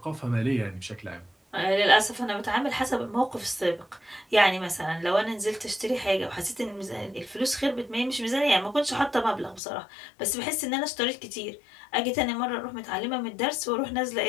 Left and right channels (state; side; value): drops out; right; at 9.6 s